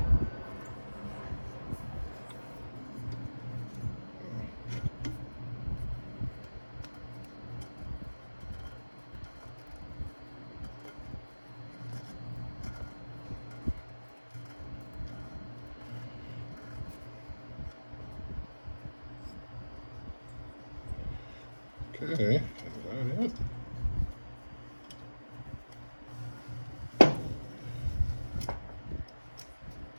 Okay, is that it?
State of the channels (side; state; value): both; inverted; correlation -1.00